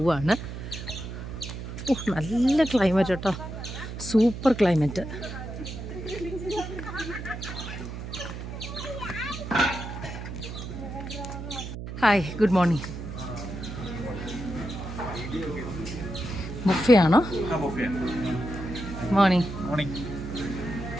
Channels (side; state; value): right; noise; hum, 8 dB below the sound